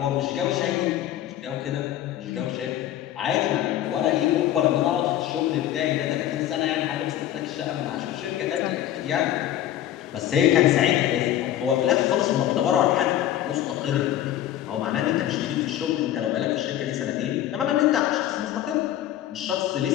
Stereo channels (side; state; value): right; quieter; 12.2 dB